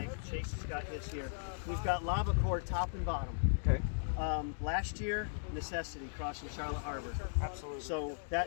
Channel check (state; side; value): silent; right; digital silence